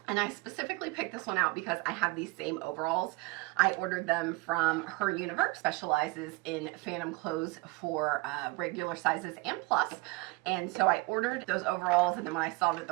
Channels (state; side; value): quieter; left; 24.0 dB